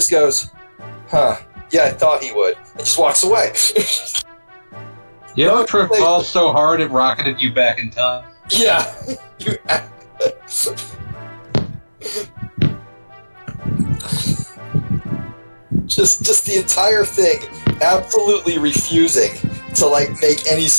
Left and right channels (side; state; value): both; inverted; correlation -1.00